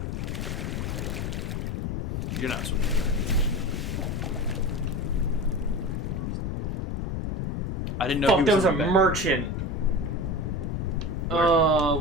You're not swimming in the right direction. I didn't know he Fuck, was there was a in the back. merchant.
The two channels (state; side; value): noise; left; rumble, 2 dB below the sound